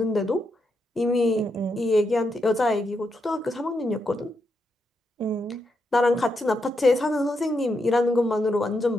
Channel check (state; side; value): normal; both; correlation 0.82